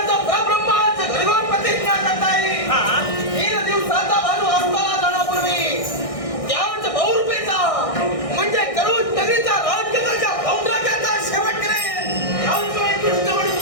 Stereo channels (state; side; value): late; right; 1.6 ms